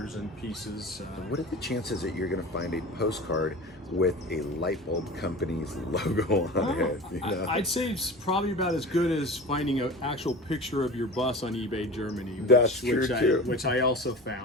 and pieces. What are the chances that you're going to find a postcard with a light bulb company's logo on it? I'd say it's probably about as good as finding an actual picture of your bus on eBay Germany. That's true too. Which I also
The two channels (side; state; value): both; normal; correlation 0.34